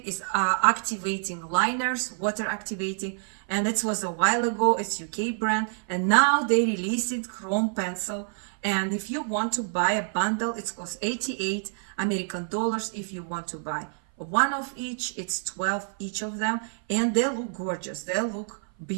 is activating liners, water activating, and it was a while ago. It's UK brand, and now they released it chrome pencil. And if you want to buy a bundle, it costs 88 American dollars. If you want to buy one of each, it's 12 each of them, and they look gorgeous. They look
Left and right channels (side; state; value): left; silent; 56 dB below the other